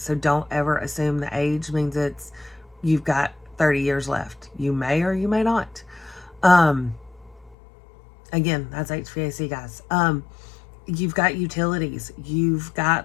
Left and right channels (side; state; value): right; drops out; at 7.6 s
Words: So don't ever assume the age means you've got 30 years left. You may or you may not. Again, that's HVAC guys. You've got utilities. You've